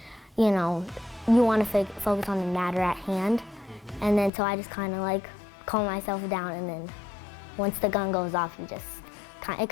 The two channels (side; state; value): right; drops out; at 4.3 s